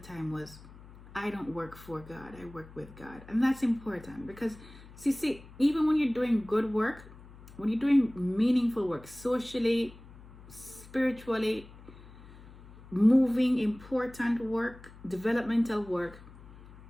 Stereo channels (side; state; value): left; noise; hum, 19 dB below the sound